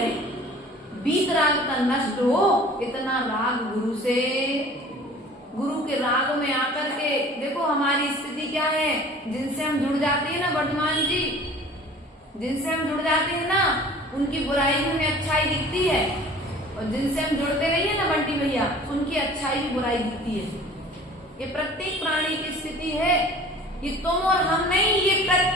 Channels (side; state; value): both; normal; correlation 0.46